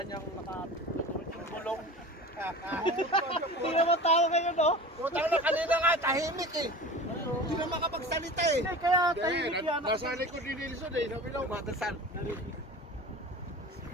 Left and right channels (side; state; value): both; normal; correlation 0.36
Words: niyang nakatulog yung gulong. Hindi naman tao ngayon, no? Putang na kanina nga, tahimik eh. Hindi na makapagsalita eh. Hindi, kaya tahimik yan. Nasa likod ni Nilsson eh. Sabi lang, matasan.